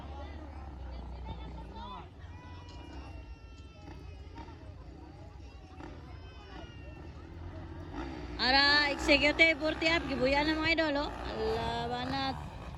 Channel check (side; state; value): both; identical; correlation 1.00